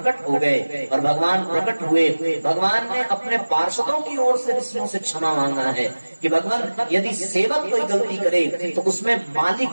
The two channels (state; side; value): inverted; both; correlation -1.00